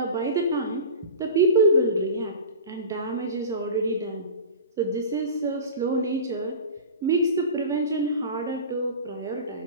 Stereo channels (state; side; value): inverted; both; correlation -0.32